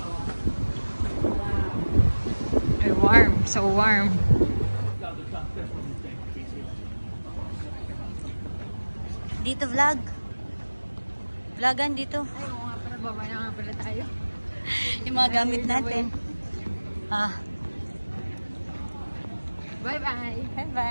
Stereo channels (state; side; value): inverted; both; correlation -1.00